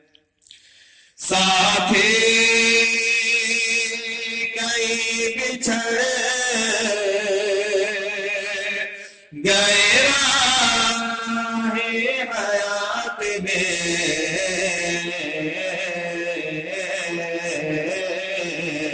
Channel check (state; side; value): identical; both; correlation 1.00